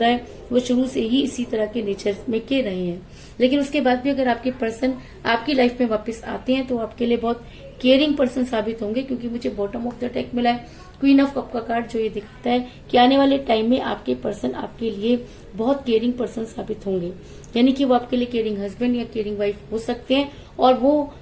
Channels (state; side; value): identical; both; correlation 1.00